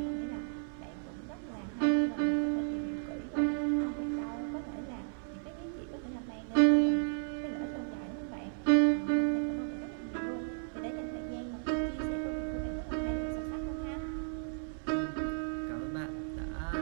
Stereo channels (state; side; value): silent; left; 55 dB below the other